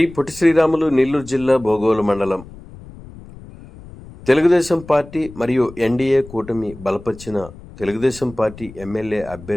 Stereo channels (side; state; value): left; noise; rumble, 18 dB below the sound